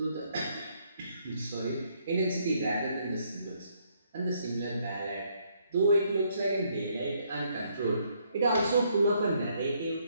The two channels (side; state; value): both; inverted; correlation -0.71